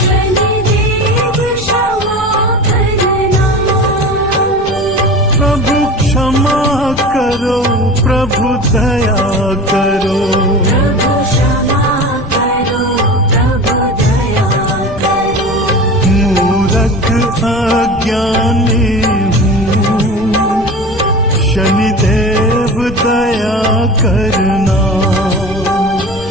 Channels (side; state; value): left; noise; rumble, 14 dB below the sound